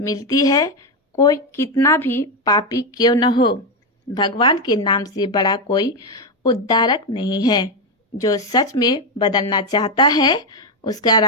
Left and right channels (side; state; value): both; normal; correlation 0.08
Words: है, कोई कितना भी पापी क्यों न हो, भगवान के नाम से बड़ा कोई उद्धारक नहीं है। जो सच में बदलना चाहता है, उसका